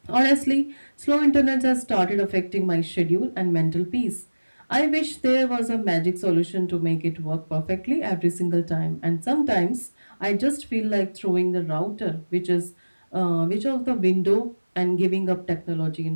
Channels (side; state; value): both; inverted; correlation -1.00